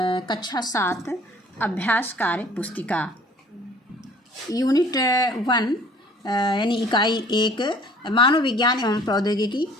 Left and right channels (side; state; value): both; normal; correlation 0.53